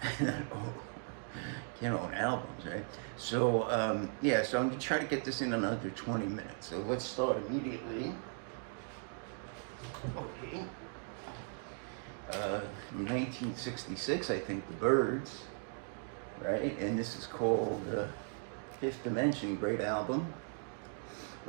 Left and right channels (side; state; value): left; silent; 53 dB below the other